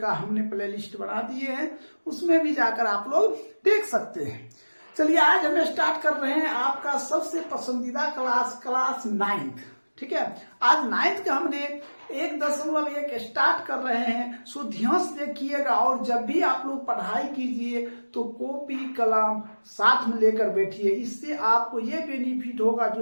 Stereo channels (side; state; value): both; inverted; correlation -1.00